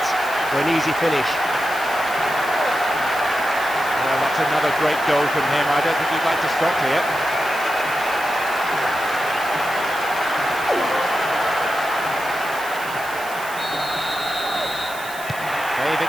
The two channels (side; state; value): right; noise; hiss, 15 dB below the sound